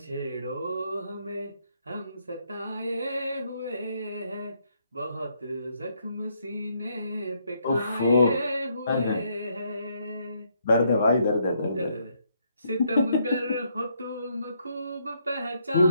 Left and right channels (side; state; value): both; inverted; correlation -0.73